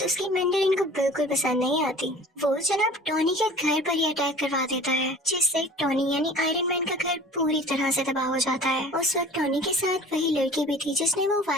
उसकी मैंडरिन को बिल्कुल पसंद नहीं आती। वो जनाब टोनी के घर पर ही अटैक करवा देता है, जिससे टोनी यानी आयरन मैन का घर पूरी तरह से तबाह हो जाता है। उस वक्त टोनी के साथ वही लड़की भी थी जिसने वो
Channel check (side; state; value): both; normal; correlation 0.44